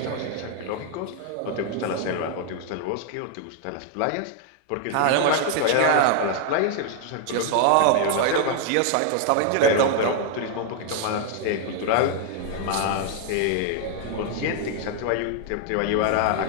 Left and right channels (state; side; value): different; both; correlation 0.00